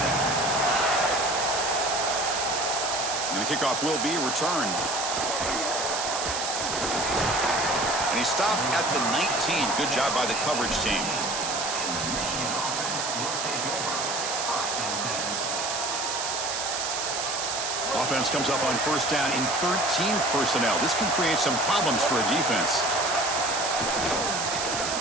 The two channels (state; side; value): noise; right; hiss, 2 dB below the sound